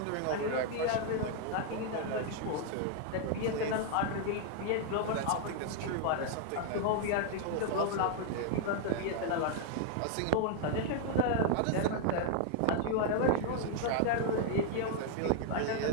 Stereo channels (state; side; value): different; both; correlation 0.00